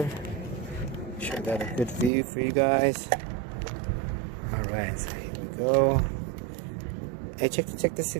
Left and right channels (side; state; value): left; drops out; at 2.1 s